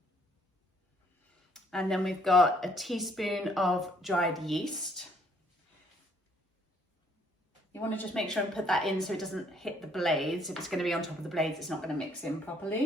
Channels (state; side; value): normal; both; correlation 0.65